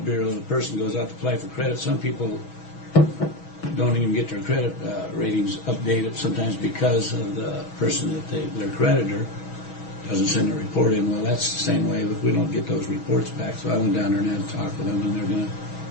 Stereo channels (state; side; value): late; right; 6.2 ms